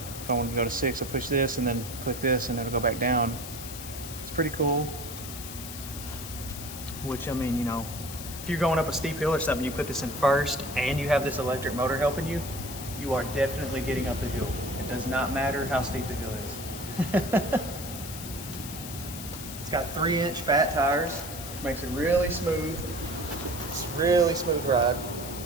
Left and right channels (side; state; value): left; noise; hiss, 10 dB below the sound